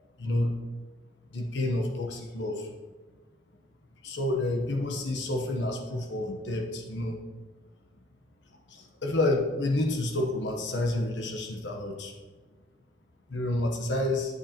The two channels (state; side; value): normal; both; correlation 0.60